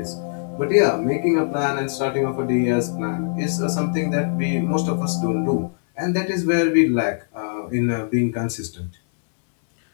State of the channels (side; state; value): right; silent; digital silence